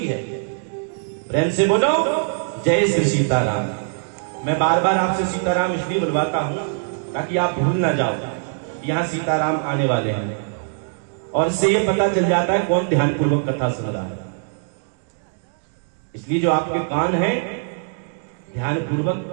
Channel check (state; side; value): silent; left; digital silence